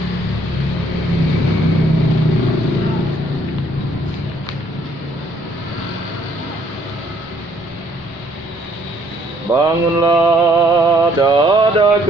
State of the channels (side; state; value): both; normal; correlation 0.64